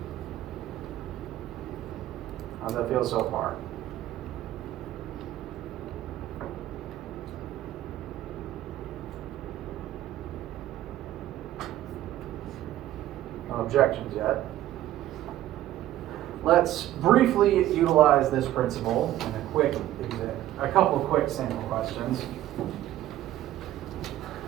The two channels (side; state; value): left; quieter; 13.8 dB